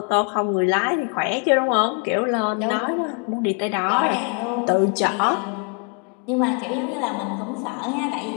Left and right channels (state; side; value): quieter; right; 39.0 dB